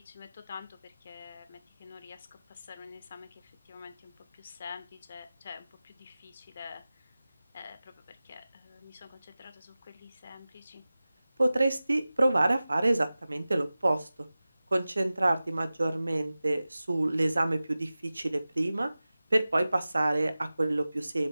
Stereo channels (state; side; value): inverted; both; correlation -0.96